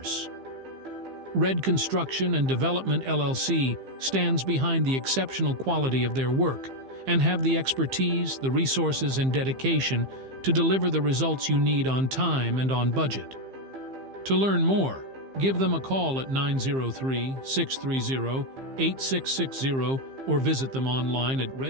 Red Construction and Development LLC stands behind the exceptional quality of their work and have the expertise, the resources, and dedication to deliver the results you need on time and on budget. To learn more, give them a call at 903-630-8660 or visit them online at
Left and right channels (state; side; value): late; left; 15 ms